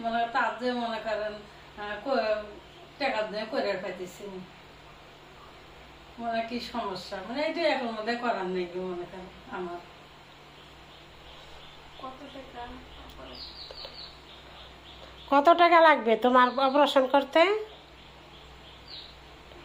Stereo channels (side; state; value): both; identical; correlation 1.00